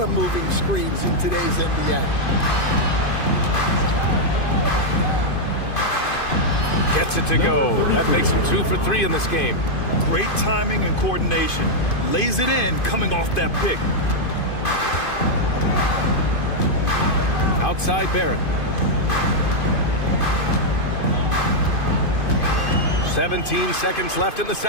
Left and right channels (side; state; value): right; late; 2.5 ms